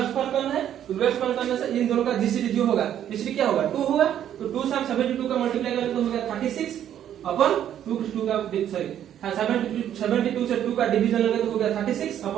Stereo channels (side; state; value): left; quieter; 10.5 dB